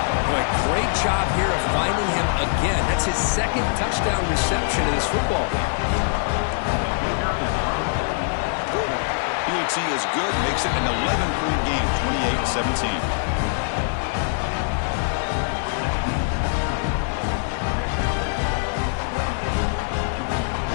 Boy, great job here of finding him again. That's his 2nd touchdown reception in this football game. The see is good. Makes it an 11-point game, 28-17.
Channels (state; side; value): silent; right; digital silence